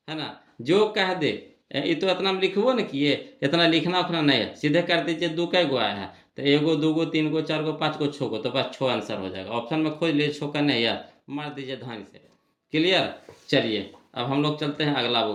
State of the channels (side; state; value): both; identical; correlation 1.00